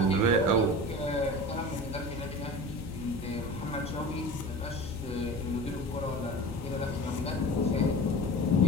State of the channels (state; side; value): normal; both; correlation 0.34